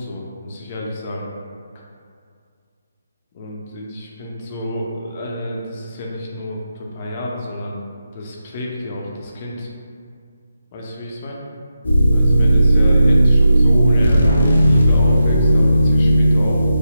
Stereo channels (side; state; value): both; inverted; correlation -0.87